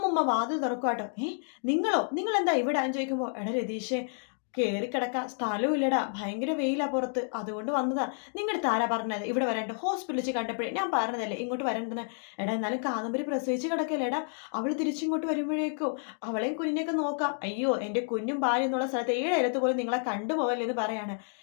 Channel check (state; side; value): silent; right; 58 dB below the other